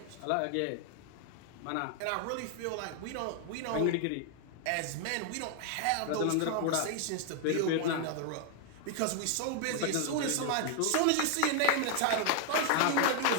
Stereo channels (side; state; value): both; different; correlation 0.00